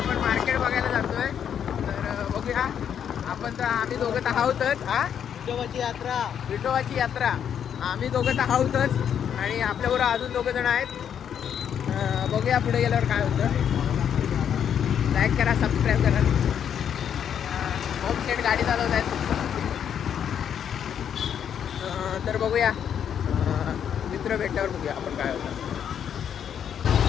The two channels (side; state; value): right; quieter; 8.6 dB